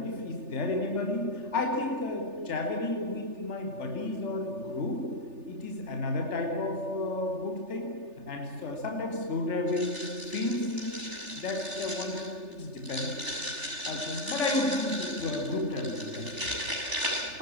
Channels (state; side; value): late; left; 3.4 ms